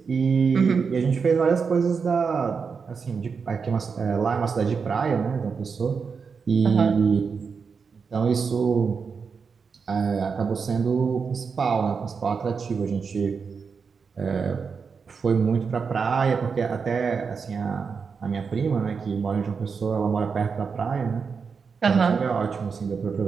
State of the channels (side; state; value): left; quieter; 5.6 dB